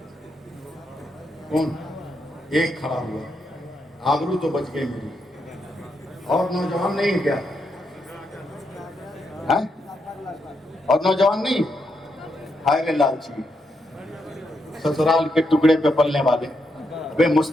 کون؟ ایک کھڑا ہوا، آبرو تو بچ گئی میری۔ اور نوجوان نہیں کیا؟ ہے؟ اور نوجوان نہیں؟ ہائے لالچی، سسرال کے ٹکڑے پہ پلنے والے، بے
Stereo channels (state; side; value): normal; both; correlation 0.81